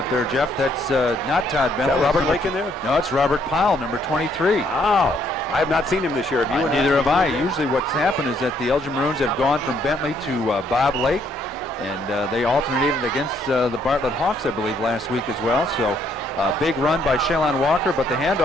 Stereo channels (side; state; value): both; normal; correlation 0.69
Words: there, Jeff. That's not Todd Bentley. Is that Robert Larkin there? No, it's Robert Powell, number 23. Wow. I have not seen him this year. Have you? Neither have I. Usually what's happened is that the Elgin Maroons have gone from Bentley to Bob Lake, and they alternated against the Bartlett Hawks, I believe, last week as well. So big run by Shalon Walker, but the